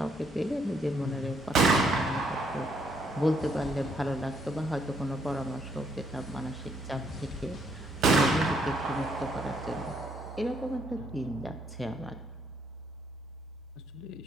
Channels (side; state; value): both; normal; correlation 0.70